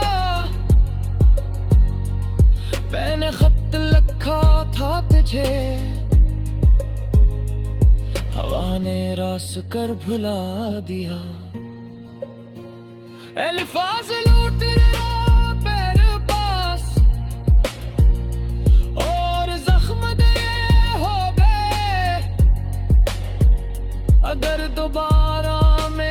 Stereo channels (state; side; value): identical; both; correlation 1.00